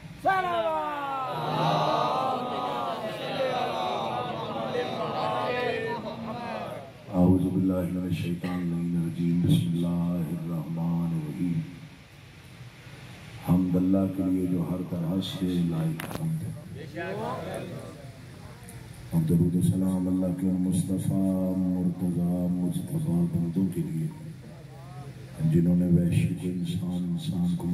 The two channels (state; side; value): identical; both; correlation 1.00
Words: औज़ु बिल्लाहि मिनश शैतानिर रजीम बिस्मिल्लाहिर्रहमानिर्रहीम। हम्द अल्लाह के लिए जो हर तरह से लायक हम्द है। और दरूद सलाम अल्लाह के मुस्तफ़ा मुर्तज़ा मुस्तफ़ा बंदों के लिए जिन्होंने वैश्विक इंसान को